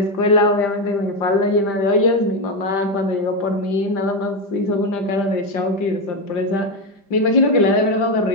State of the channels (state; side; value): late; right; 5.0 ms